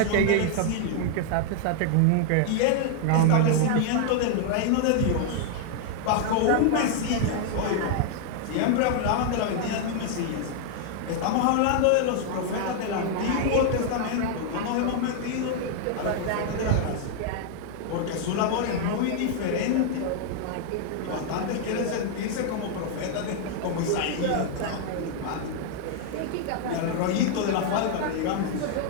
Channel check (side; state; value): both; different; correlation 0.00